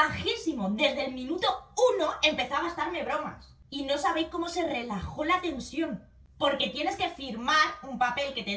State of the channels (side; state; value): both; identical; correlation 1.00